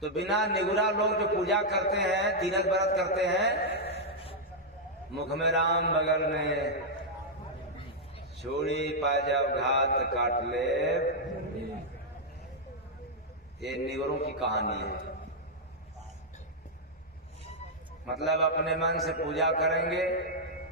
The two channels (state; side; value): normal; both; correlation -0.05